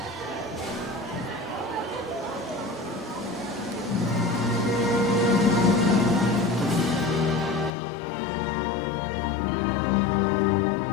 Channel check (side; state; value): right; drops out; at 7.7 s